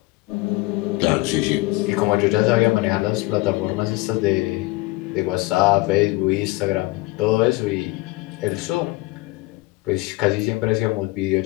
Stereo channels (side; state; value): right; quieter; 21.2 dB